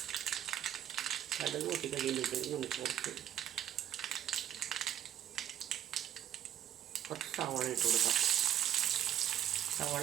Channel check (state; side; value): quieter; left; 11.2 dB